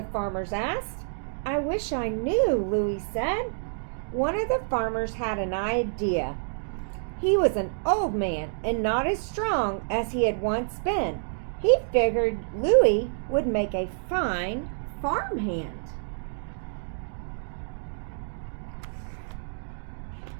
farmers asked. "I wish I knew," Louie said. One of the farmers had an idea. He was an old man and not as strong as he had once been. He figured Louie would make a fine farmhand.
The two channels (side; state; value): left; silent; digital silence